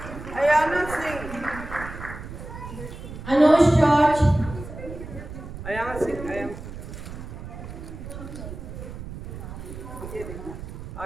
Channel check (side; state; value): right; noise; rumble, 11 dB below the sound